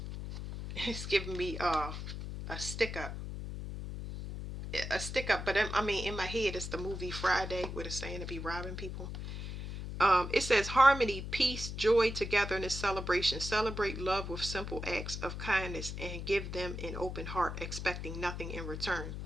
it's giving me a stick up. But I mean, in my head, it's the movie Friday where it's saying to be robbing people. It says harmony, peace, joy, togetherness, celebration. Celebrate love with simple acts of kindness and give them an open heart, expecting nothing in return.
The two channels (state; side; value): noise; left; hum, 6 dB below the sound